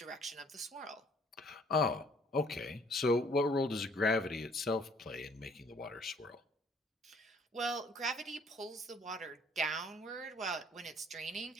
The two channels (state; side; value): normal; both; correlation 0.60